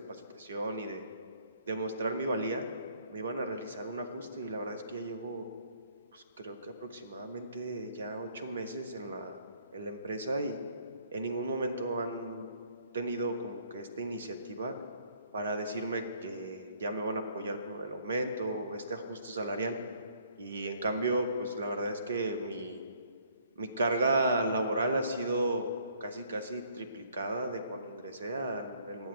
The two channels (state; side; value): inverted; both; correlation -0.63